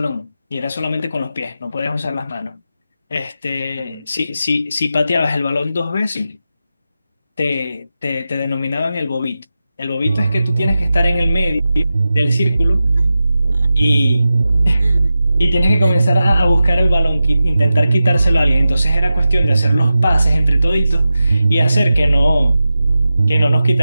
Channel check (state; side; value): inverted; both; correlation -0.92